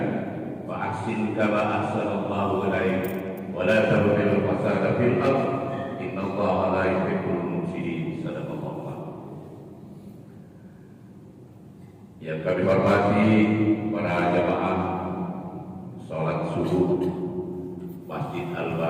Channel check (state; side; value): identical; both; correlation 1.00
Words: wa ahsin kama ahsana Allahu ilaik wa la tabghil fasada fil ardh innallaha la yuhibbul mufsidin. Sadaqallahu. Yang kami hormati para jamaah salat subuh Masjid